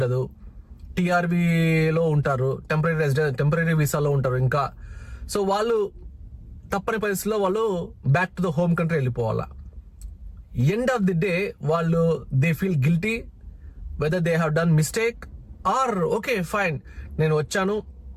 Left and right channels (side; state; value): both; identical; correlation 1.00